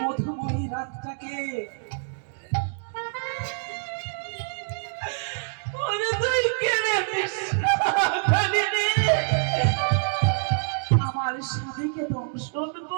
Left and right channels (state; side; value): silent; left; digital silence